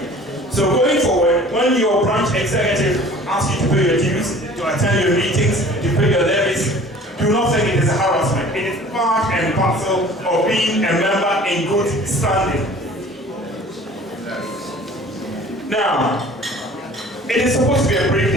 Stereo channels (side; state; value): both; normal; correlation 0.47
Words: So going forward, when your branch executive asks you to pay your dues, to attend your meetings, to pay your levies, do not think it is a harassment. It is part and parcel of being a member in good standing. Now, it is supposed to be a brief